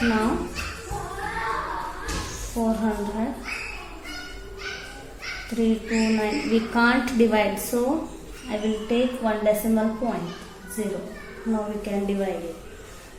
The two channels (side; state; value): both; identical; correlation 1.00